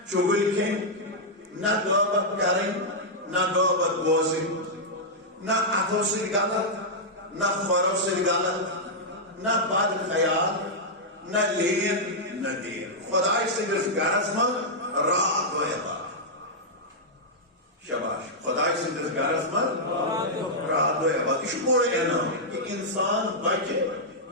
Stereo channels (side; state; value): both; normal; correlation -0.07